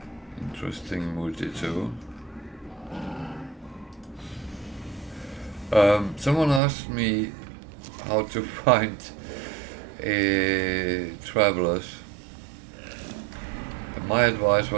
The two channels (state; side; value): drops out; left; at 6.6 s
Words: interesting multi-tool. Someone asked me how to find travelers. And my advice